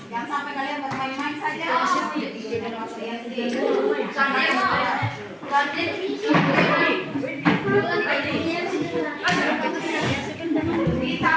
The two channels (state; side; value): identical; both; correlation 1.00